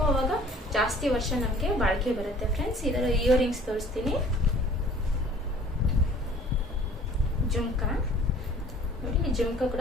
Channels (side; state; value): both; normal; correlation 0.51